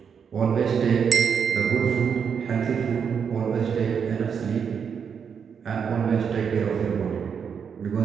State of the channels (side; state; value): left; quieter; 6.9 dB